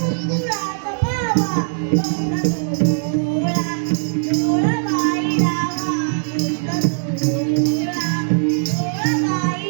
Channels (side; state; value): left; silent; digital silence